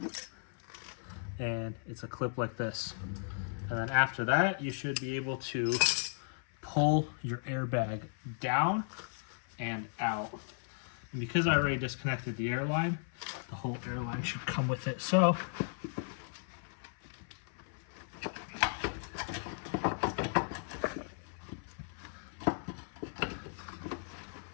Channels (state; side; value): silent; right; 54 dB below the other